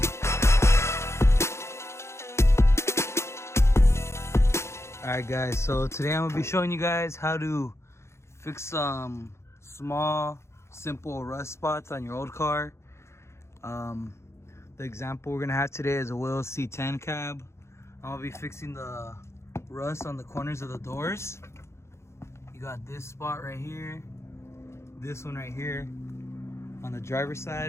Alright guys, so today I'm going to be showing you guys how to fix some small, simple rust spots on your old car. The example we're going to have today is a Will C10 cab. I'm going to be fixing the rust on the corners of the doors. You got this spot right here, this one right here on the driver's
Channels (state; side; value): late; right; 0.13 ms